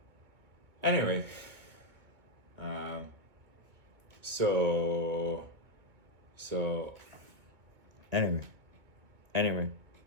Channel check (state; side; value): late; left; 2.2 ms